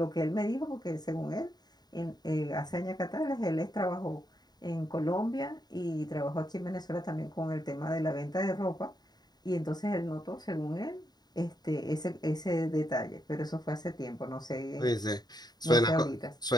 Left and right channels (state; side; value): late; right; 0.20 ms